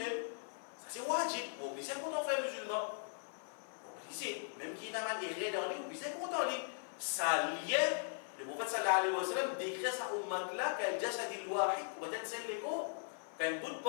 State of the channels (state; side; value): silent; right; 52 dB below the other